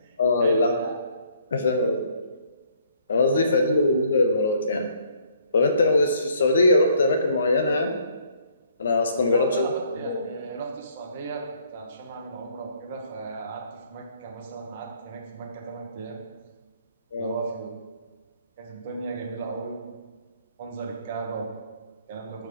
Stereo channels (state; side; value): inverted; both; correlation -0.64